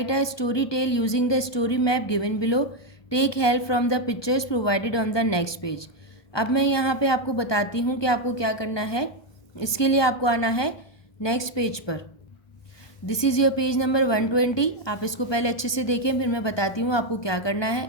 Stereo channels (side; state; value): right; late; 1.2 ms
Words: a story tell using the story map given below. Take help from the pictures provided on the next page. अब मैं यहाँ पे आपको बताती हूँ कि आपको क्या करना है. इसके लिए आपको आना है नेक्स्ट पेज पर. This is your page number 120. आप इसको पहले अच्छे से देखें फिर मैं बताती हूँ आपको क्या करना